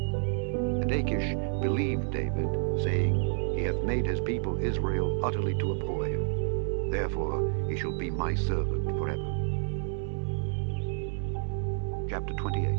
Achish believed David, saying, He hath made his people Israel utterly to abhor him. Therefore he shall be my servant forever. Chapter 28.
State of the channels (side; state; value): left; silent; digital silence